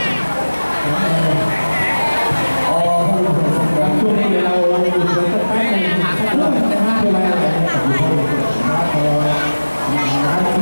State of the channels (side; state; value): both; inverted; correlation -1.00